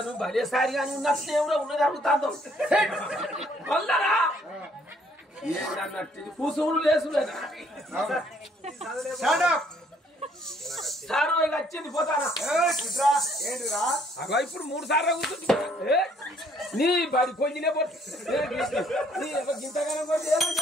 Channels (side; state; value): both; normal; correlation 0.64